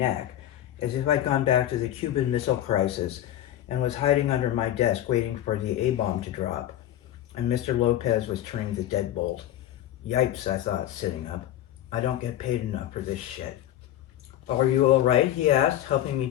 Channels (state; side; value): quieter; right; 12.5 dB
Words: as if I'd gone back to the Cuban Missile Crisis and was hiding under my desk waiting for the A-bomb to drop. And Mr. Lopez was turning the deadbolt. Yipes, I thought, sitting up. I don't get paid enough for this shit. "Are you all right?" he asked, helping me